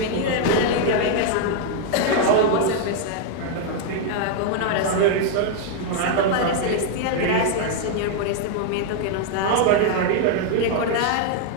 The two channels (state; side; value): different; both; correlation 0.00